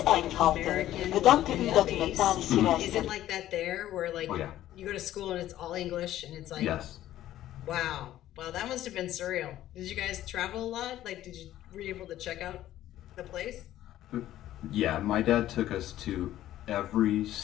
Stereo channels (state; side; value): quieter; right; 13.4 dB